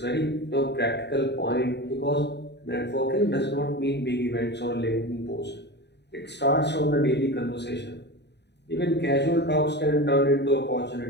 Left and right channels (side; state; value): right; late; 0.50 ms